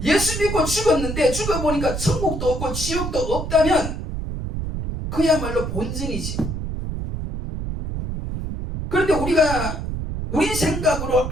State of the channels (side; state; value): right; noise; rumble, 4 dB below the sound